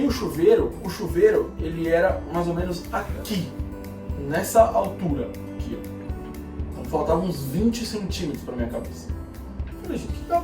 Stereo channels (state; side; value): identical; both; correlation 1.00